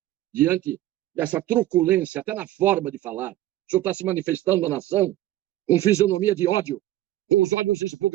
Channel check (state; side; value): quieter; left; 14.6 dB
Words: diante dessa truculência, até na forma de falar. O senhor está se manifestando na nação com fisionomia de ódio, com os olhos